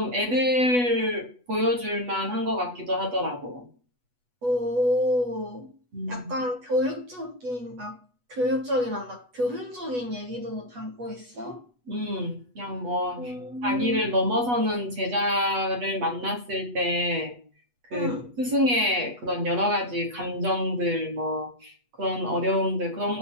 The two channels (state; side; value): late; left; 8.2 ms